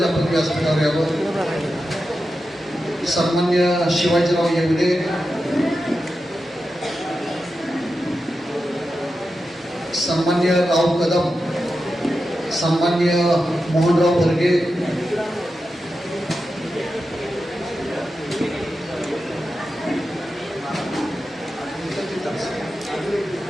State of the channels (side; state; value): both; normal; correlation 0.90